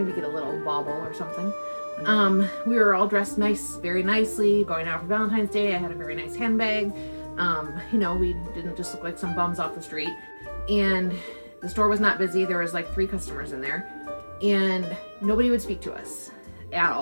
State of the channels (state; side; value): inverted; both; correlation -1.00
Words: get a little bauble or something. We were all dressed very nicely, going out for Valentine's Day. I had a very nice handbag. You know, we didn't just look like some bums off the street. And the store was not busy. There was like 3 customers in there, and nobody would speak to us at